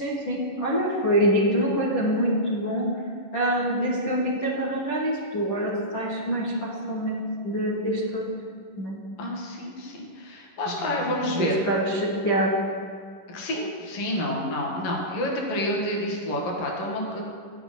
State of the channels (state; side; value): late; right; 11 ms